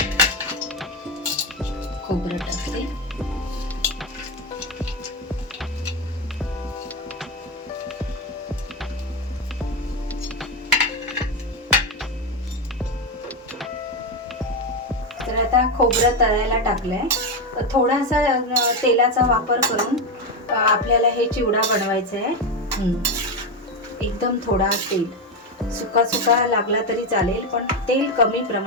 खोबरं टाकते, तर आता खोबरं तळायला टाकलंय. थोडासा तेलाचा वापर करून आपल्याला हे चिवडा बनवायचा आहे. एकदम थोडा तेल, सुका सुका लागला तरी चालेल, पण तेल कमी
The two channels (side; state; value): both; normal; correlation 0.11